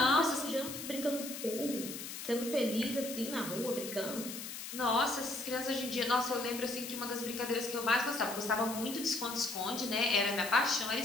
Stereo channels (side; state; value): left; noise; hiss, 8 dB below the sound